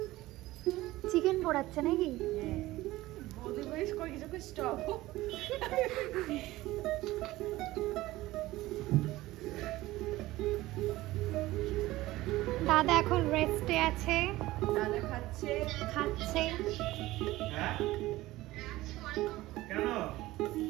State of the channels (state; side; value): quieter; left; 17.6 dB